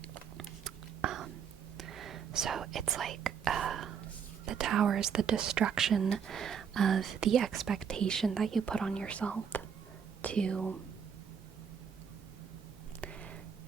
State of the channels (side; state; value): left; quieter; 7.3 dB